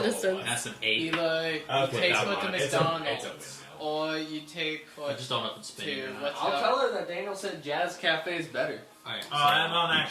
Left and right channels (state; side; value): identical; both; correlation 1.00